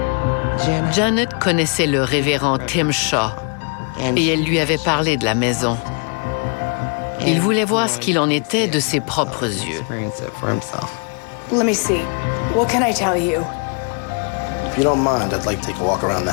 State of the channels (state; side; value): quieter; right; 39.2 dB